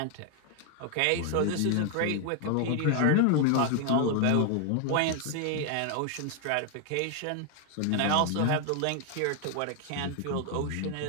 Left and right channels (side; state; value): both; different; correlation 0.01